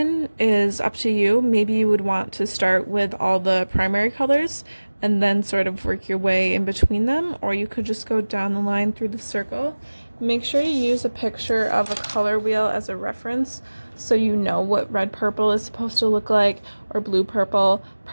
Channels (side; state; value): both; inverted; correlation -1.00